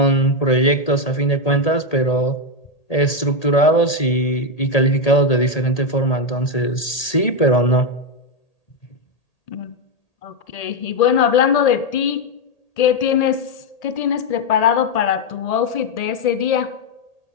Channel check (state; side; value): late; right; 1.8 ms